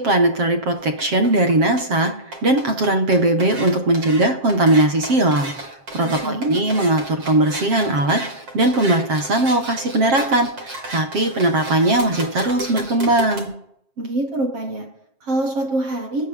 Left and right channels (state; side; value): late; left; 7.5 ms